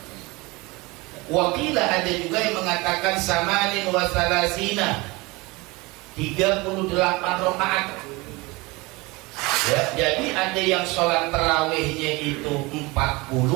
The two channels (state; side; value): quieter; left; 23.8 dB